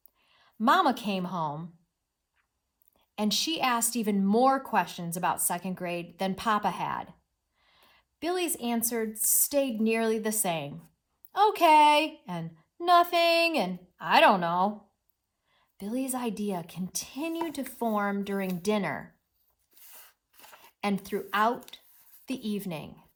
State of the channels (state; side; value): identical; both; correlation 1.00